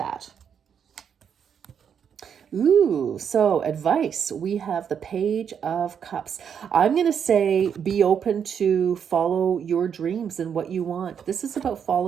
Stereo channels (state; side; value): quieter; left; 7.7 dB